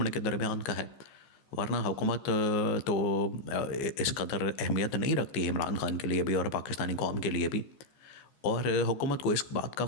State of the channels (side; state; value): right; late; 14 ms